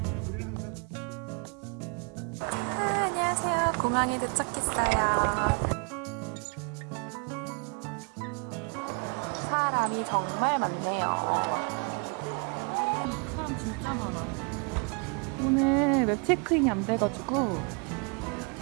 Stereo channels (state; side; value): quieter; left; 35.4 dB